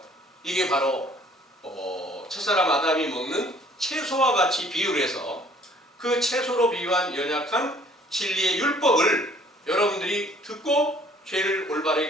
이게 바로 첫사람 아담이 먹는 채소와 같이 비유를 해서 그 채소로 비유한 연약한 진리의 율법을 여러분들이 듣고 죄를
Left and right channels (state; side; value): normal; both; correlation 0.57